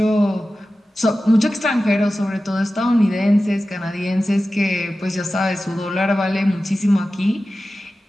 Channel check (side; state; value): both; normal; correlation 0.94